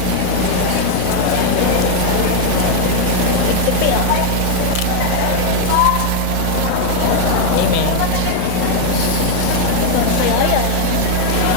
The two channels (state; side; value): different; both; correlation 0.00